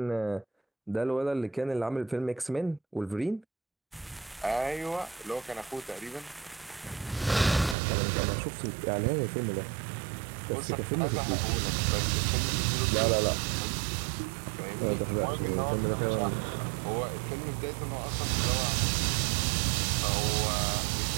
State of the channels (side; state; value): left; drops out; at 7.8 s